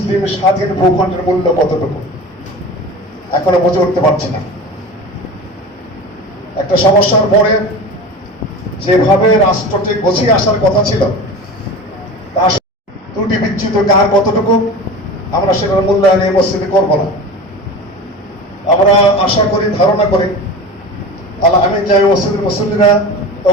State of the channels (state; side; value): normal; both; correlation 0.32